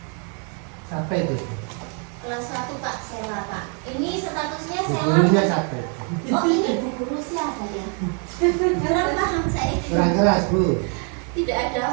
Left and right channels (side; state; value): left; quieter; 38.8 dB